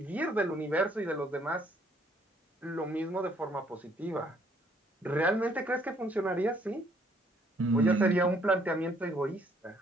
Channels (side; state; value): both; normal; correlation 0.65